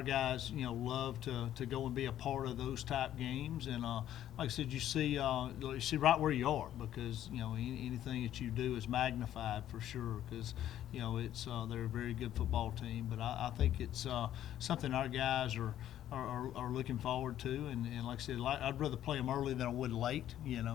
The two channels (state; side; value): quieter; right; 11.7 dB